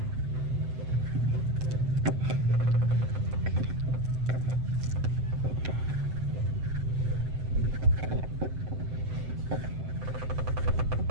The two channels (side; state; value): left; late; 7.8 ms